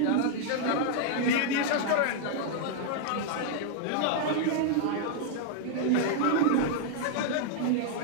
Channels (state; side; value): different; both; correlation 0.00